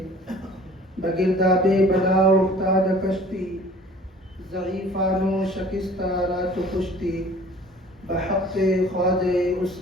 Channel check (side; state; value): both; normal; correlation 0.49